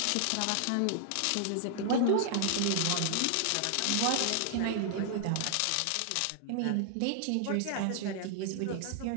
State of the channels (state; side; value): different; both; correlation 0.00